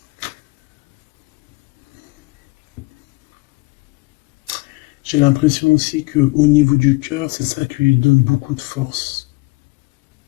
J'ai l'impression aussi qu'au niveau du cœur, c'est ça qui lui donne beaucoup de force.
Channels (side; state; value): right; quieter; 24.6 dB